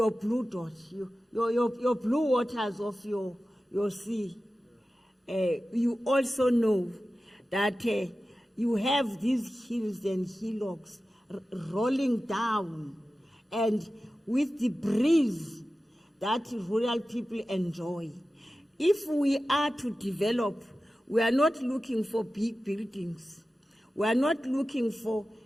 blue dot, your blue waters of your sea. You also know that you have these hills and hillocks rolling down, and with the breeze that rural people enjoy. If we are to develop, we are not looking for big buildings. We are not looking for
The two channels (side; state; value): both; normal; correlation 0.94